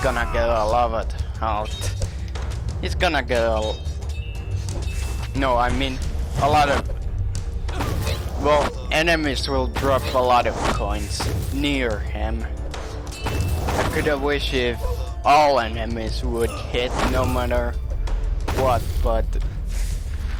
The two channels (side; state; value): both; identical; correlation 1.00